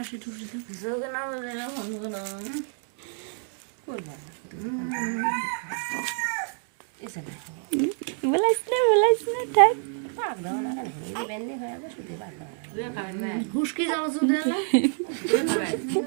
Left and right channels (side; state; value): left; silent; 60 dB below the other